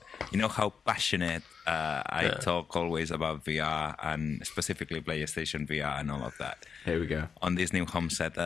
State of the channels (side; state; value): right; quieter; 6.3 dB